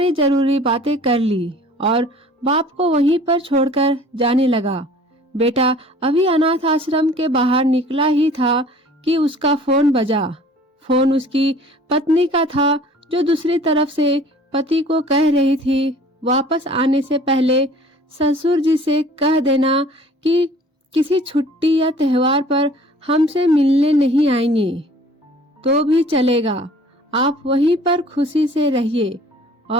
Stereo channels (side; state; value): both; normal; correlation 0.49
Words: जरूरी बातें कर ली और बाप को वहीं पर छोड़कर जाने लगा। बेटा अभी अनाथ आश्रम के बाहर निकला ही था कि उसका फोन बजा। फोन उसकी पत्नी का था, जो दूसरी तरफ से पति को कह रही थी वापस आने से पहले ससुर जी से कह देना कि किसी छुट्टी या त्योहार पर हमसे मिलने नहीं आएंगे तो भी चलेगा, आप वहीं पर खुशी से रहिए